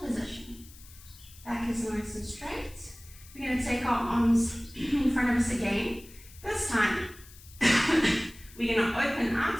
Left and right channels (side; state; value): left; noise; hiss, 21 dB below the sound